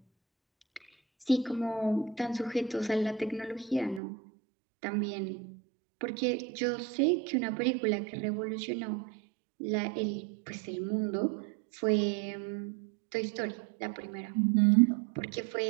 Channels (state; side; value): drops out; left; at 4.0 s